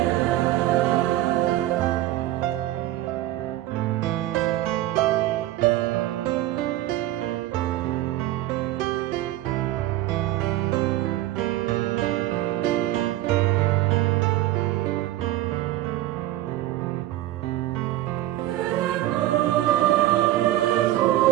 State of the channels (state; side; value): quieter; left; 15.1 dB